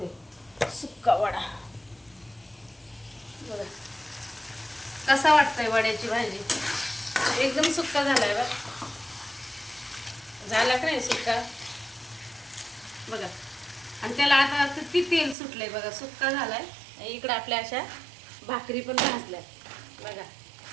सुक्का वडा. बघा कसा वाटतंय वड्याची भाजी. एकदम सुक्का झालाय बघ. झाला का नाही सुक्का बघा. आणि त्याला आता किती तेल सुटलंय बघा. सुक्का झालाय. इकडं आपल्या अशा भाकरी पण भाजल्या बघा.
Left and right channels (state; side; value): drops out; left; at 15.4 s